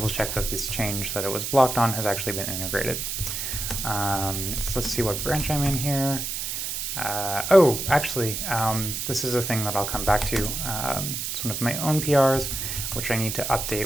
check that this change that it was blocked on has actually been integrated. So let's see what branch I'm in here. Actually, this is a thing that I'll come back to. It's one of my own PRs, which I need to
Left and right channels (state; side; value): noise; right; hiss, 3 dB below the sound